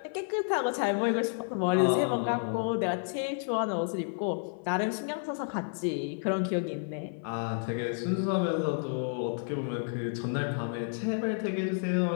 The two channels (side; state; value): right; silent; 57 dB below the other